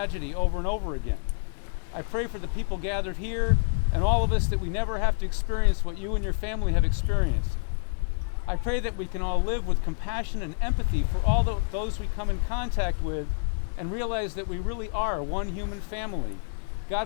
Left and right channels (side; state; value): right; silent; digital silence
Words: over and over again. I pray for the people gathered here and all of us that we never have to experience what you and your family have experienced. I pray that we can all live with compassion and empathy for all those we come in contact with and realize that we really are one human family.